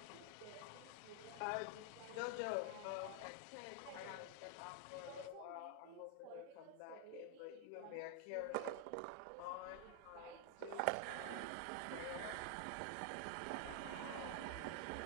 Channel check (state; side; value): different; both; correlation 0.00